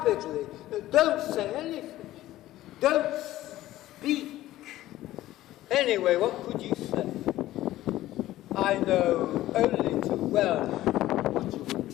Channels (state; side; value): quieter; right; 15.1 dB